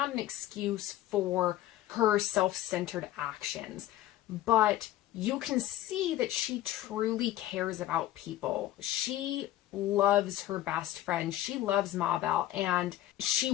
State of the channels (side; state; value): right; quieter; 14.0 dB